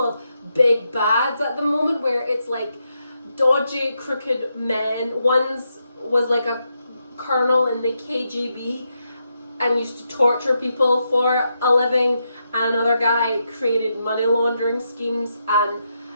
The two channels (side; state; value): both; inverted; correlation -0.83